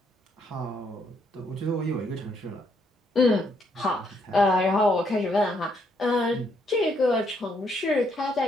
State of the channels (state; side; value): normal; both; correlation 0.73